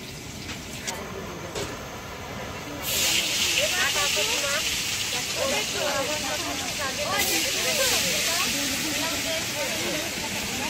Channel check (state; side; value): identical; both; correlation 1.00